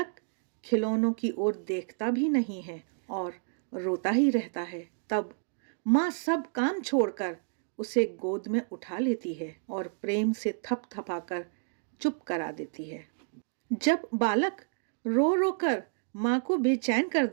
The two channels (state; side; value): silent; left; digital silence